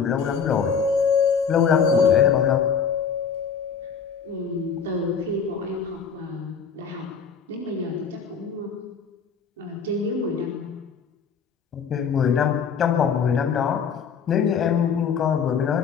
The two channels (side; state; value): right; quieter; 6.4 dB